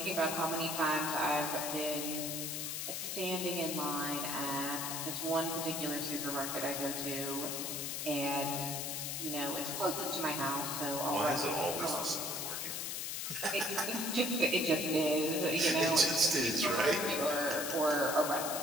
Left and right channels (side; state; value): left; noise; hiss, 3 dB below the sound